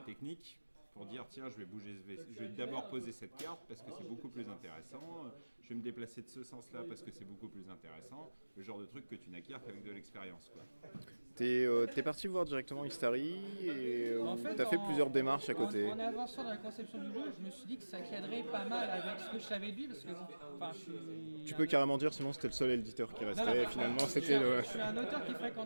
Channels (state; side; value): inverted; both; correlation -1.00